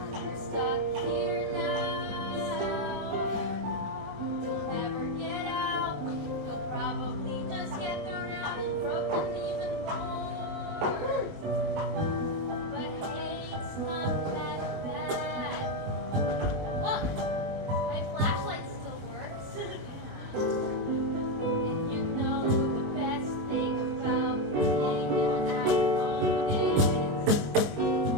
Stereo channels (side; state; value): left; late; 20 ms